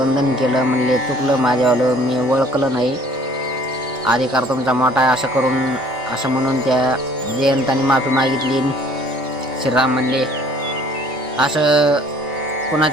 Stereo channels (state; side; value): normal; both; correlation 0.55